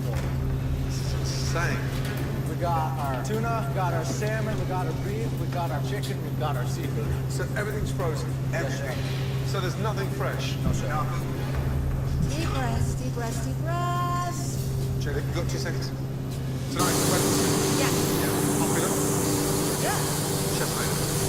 full. This is insane. We got our tuna, we got our salmon, we got our beef, we got our chicken, we got our seafood. So everything's frozen. Everything. So there's nothing fresh. No, sir. Deep breaths, deep breaths, deep breaths. Julie, you've got 2 seconds. Tonight, the wedding soup. Yes. Popular. Yeah. Chef made it.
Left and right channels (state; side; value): identical; both; correlation 1.00